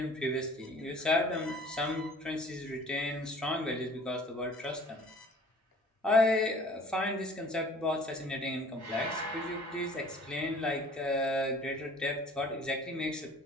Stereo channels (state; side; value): normal; both; correlation 0.50